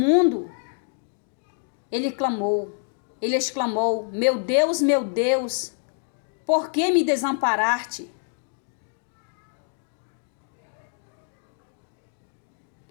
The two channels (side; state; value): right; silent; 61 dB below the other